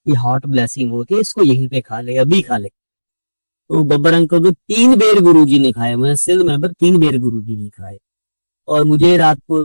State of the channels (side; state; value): both; inverted; correlation -1.00